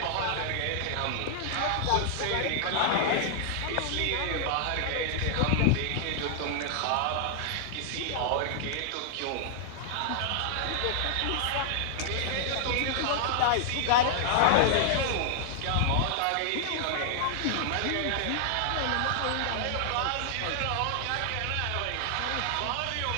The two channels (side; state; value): both; different; correlation -0.01